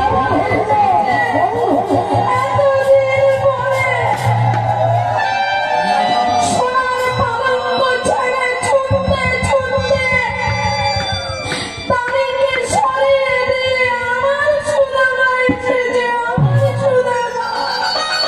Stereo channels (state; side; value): noise; right; rumble, 27 dB below the sound